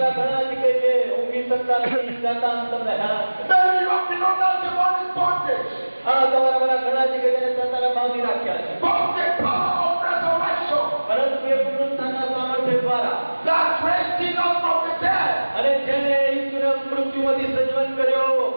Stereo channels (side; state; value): both; inverted; correlation -1.00